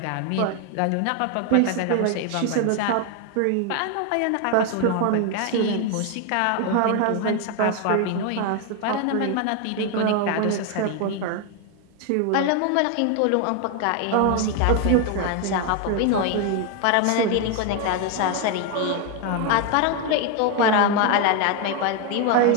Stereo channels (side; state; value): both; different; correlation 0.01